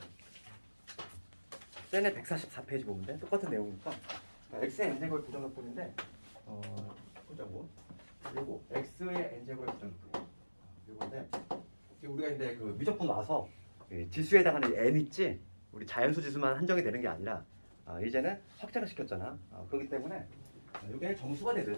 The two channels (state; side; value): inverted; both; correlation -1.00